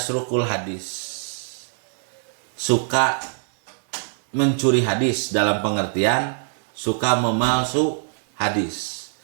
hadis, suka mencuri hadis, dalam pengertian suka memalsu hadis.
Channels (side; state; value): left; silent; digital silence